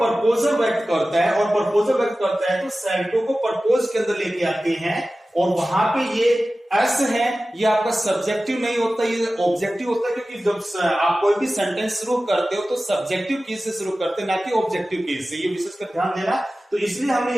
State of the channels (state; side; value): normal; both; correlation 0.96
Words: व्यक्त करता है, और प्रपोजल व्यक्त करता है तो सेल्टो को प्रपोज के अंदर लेके आते हैं, और वहां पे ये एस है, ये आपका सब्जेक्टिव नहीं होता, ये ऑब्जेक्टिव होता है। क्योंकि जब आप कोई भी सेंटेंस शुरू करते हो तो सब्जेक्टिव केस से शुरू करते हैं, ना कि ऑब्जेक्टिव केस से। ये विशेष कर ध्यान देना। तो इसलिए हमने